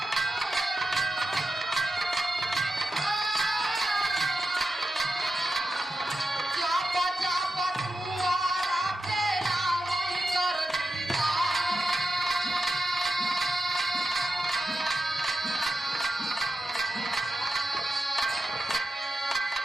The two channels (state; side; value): normal; both; correlation 0.89